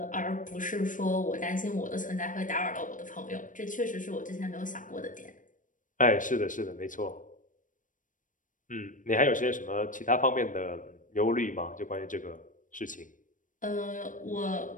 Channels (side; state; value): right; late; 0.38 ms